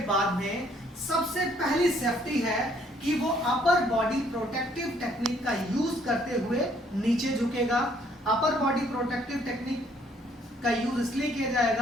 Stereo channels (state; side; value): normal; both; correlation 0.64